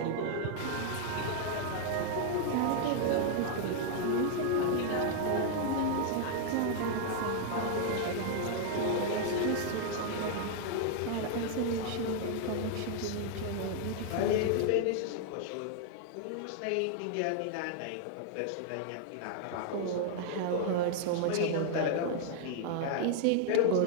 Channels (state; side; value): different; both; correlation 0.00